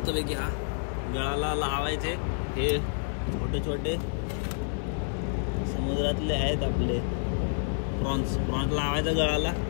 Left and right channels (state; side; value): silent; right; digital silence